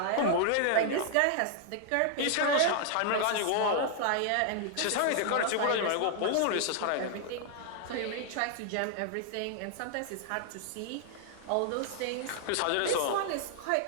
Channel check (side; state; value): both; different; correlation 0.00